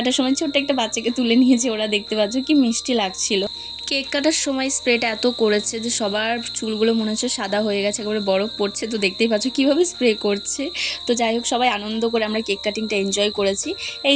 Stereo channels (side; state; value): both; identical; correlation 1.00